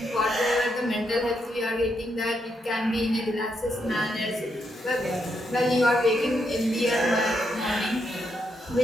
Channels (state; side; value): normal; both; correlation 0.80